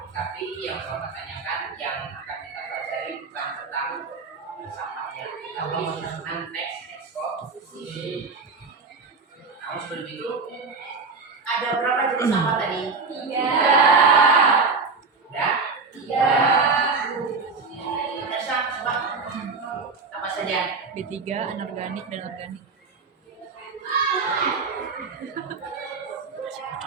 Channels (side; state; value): left; quieter; 4.5 dB